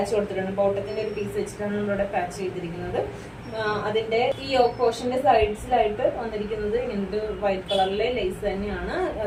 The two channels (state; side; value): identical; both; correlation 1.00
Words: കൊടുത്തിട്ടുണ്ട്. ബോട്ടത്തിന്റെ ഒരു പീസ് വെച്ചിട്ടാണ് നമ്മളിവിടെ പാച്ച് ചെയ്തിരിക്കുന്നത്. അതിന്റെ ഈ യോക്ക് പോർഷന്റെ സൈഡ്സിലായിട്ട് വന്നിരിക്കുന്നത് ഇങ്ങനത്തെ വൈറ്റ് കളറിലെ ലേസ് തന്നെയാണ്.